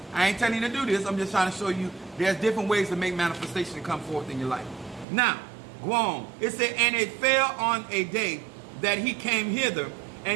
I ain't telling you to do this. I'm just trying to show you there's different ways to make manifestation come forth in your life. Now, go on. It said, and it fell on a day that he came hither,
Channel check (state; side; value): drops out; left; at 5.1 s